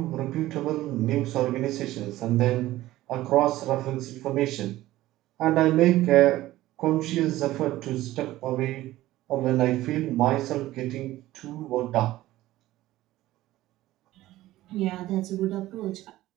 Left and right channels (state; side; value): quieter; left; 15.9 dB